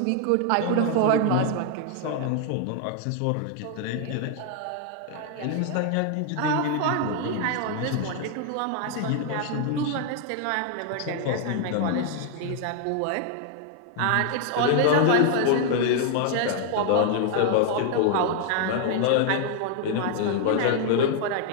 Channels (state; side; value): different; both; correlation 0.00